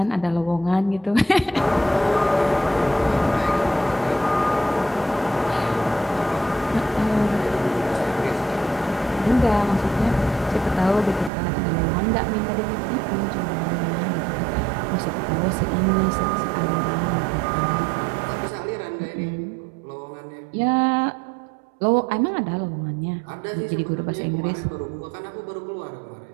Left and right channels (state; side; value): drops out; left; at 11.3 s